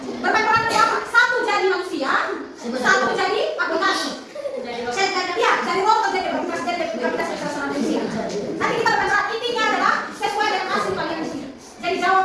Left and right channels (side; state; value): both; identical; correlation 1.00